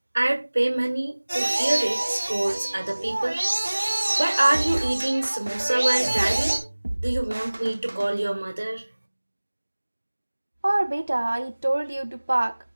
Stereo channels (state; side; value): inverted; both; correlation -1.00